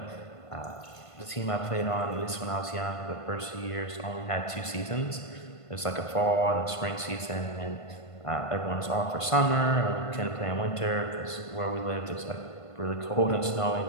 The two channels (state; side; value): late; right; 1.5 ms